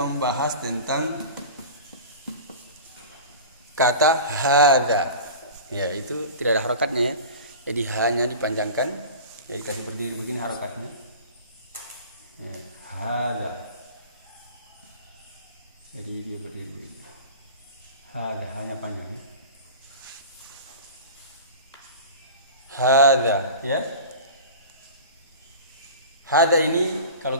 tentang kata hadza. Ya, itu tidak ada harakatnya ya. Jadi hanya dipanjangkan, jadi kalau berdiri begini harokatnya. Ya, hadza. hadza, ya. Hadza ini kalau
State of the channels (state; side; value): inverted; both; correlation -0.36